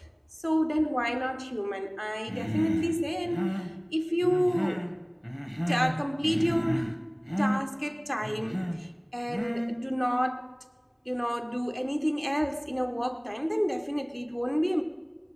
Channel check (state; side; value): identical; both; correlation 1.00